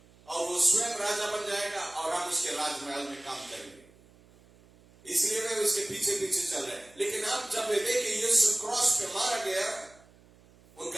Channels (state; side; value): noise; right; hum, 27 dB below the sound